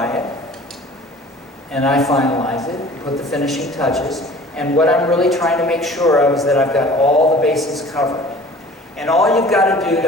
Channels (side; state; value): both; normal; correlation 0.46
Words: it, and I finalize it, put the finishing touches, and what I'm really trying to make sure of is that I've got all the bases covered. And all you've got to do to